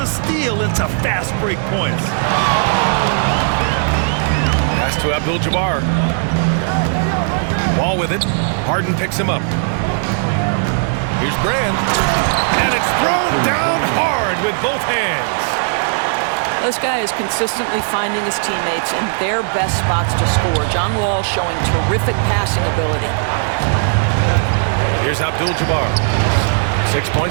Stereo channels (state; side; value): silent; left; 65 dB below the other